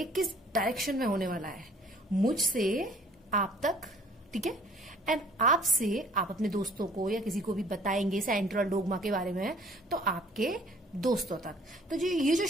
किस डायरेक्शन में होने वाला है, मुझसे आप तक, ठीक है। एंड आपसे आप अपने दोस्तों को या किसी को भी बताएंगे सेंट्रल डोग्मा के बारे में, तो आपके दोस्तों तक। तो जो ये जो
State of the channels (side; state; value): both; normal; correlation 0.55